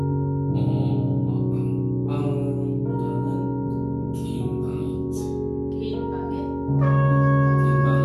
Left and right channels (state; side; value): identical; both; correlation 1.00